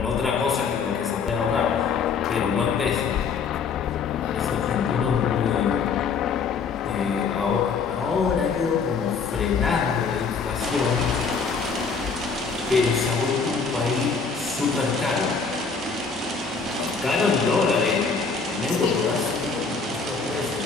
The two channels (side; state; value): right; quieter; 5.3 dB